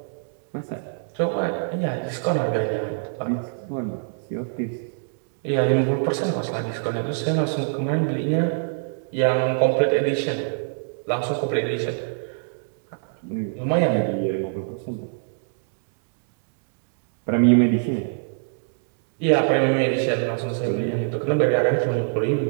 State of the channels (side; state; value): left; silent; digital silence